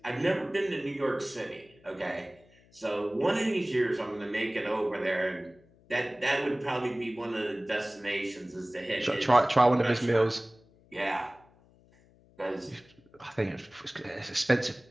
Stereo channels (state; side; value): noise; left; hum, 29 dB below the sound